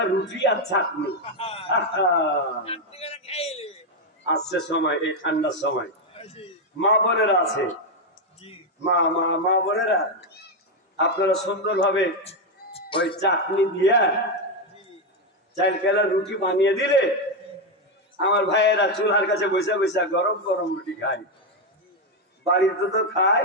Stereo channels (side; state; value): both; normal; correlation 0.05